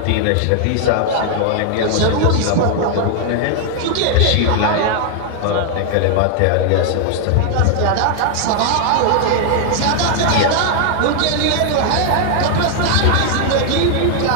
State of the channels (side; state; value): both; different; correlation 0.00